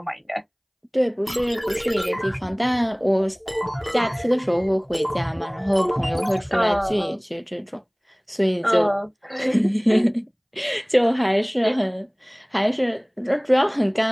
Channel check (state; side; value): identical; both; correlation 1.00